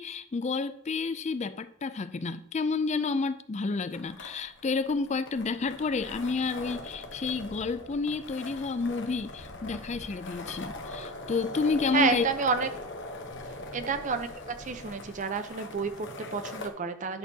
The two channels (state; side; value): normal; both; correlation 0.36